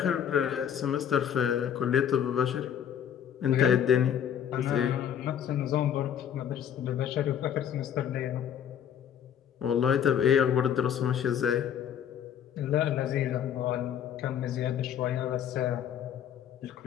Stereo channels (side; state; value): right; quieter; 9.2 dB